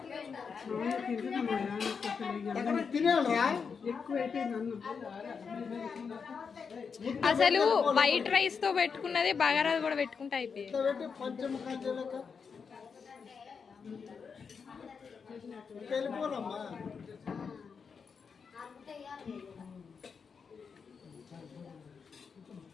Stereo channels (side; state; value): right; quieter; 5.8 dB